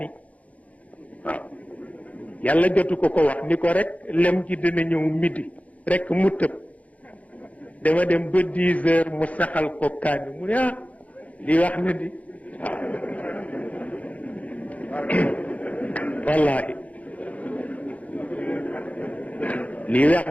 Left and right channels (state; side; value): late; right; 0.069 ms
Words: waaw yàlla jotu ko wax ni ko rek lem ji dina ñëw midi rek mu tëb dama dem ba 10 heures mu saxal ko kaani mu ne lii wax na di wallahi lii